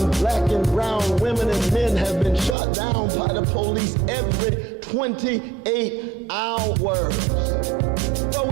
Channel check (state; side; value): drops out; left; at 2.6 s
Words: black and brown women and men have been shot down by the police every 28 hours. But